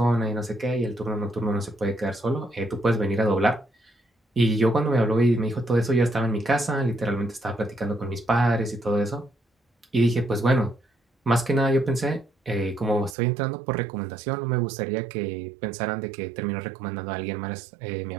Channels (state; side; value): drops out; left; at 13.2 s